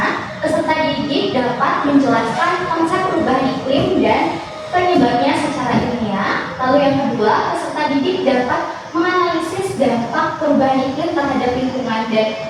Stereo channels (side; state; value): both; identical; correlation 1.00